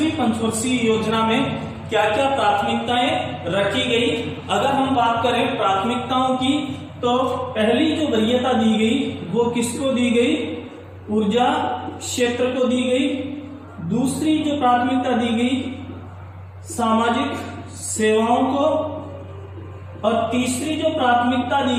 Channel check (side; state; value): both; identical; correlation 1.00